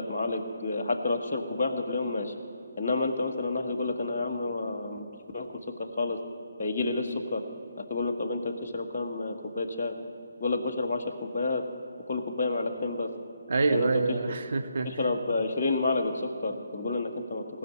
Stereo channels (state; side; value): inverted; both; correlation -0.76